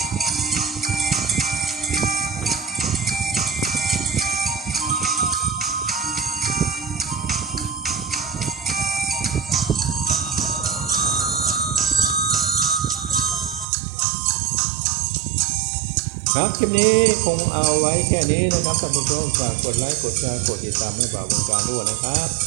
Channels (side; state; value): left; drops out; at 13.7 s